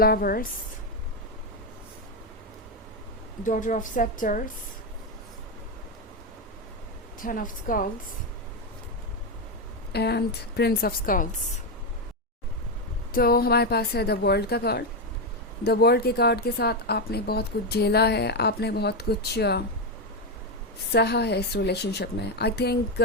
daughter of scepters, ten of skulls and prince of skulls. तो हमारे पास है द वर्ल्ड का कार्ड. द वर्ल्ड के कार्ड के साथ आपने बहुत कुछ झेला है, आपने बहुत कुछ सहा है इस रिलेशनशिप में. आई थिंक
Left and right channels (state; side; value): normal; both; correlation 0.07